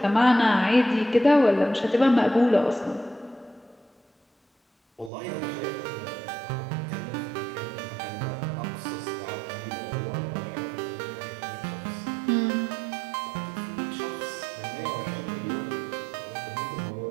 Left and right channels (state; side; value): drops out; left; at 5.1 s